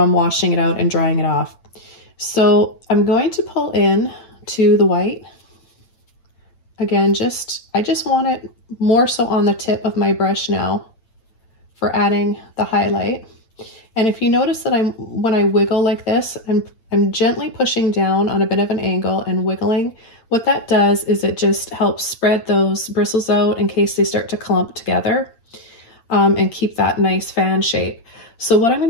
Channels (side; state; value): right; late; 8.9 ms